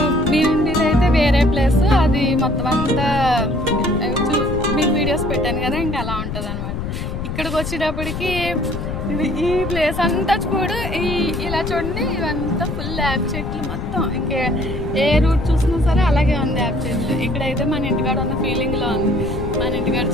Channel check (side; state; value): left; noise; rumble, 5 dB below the sound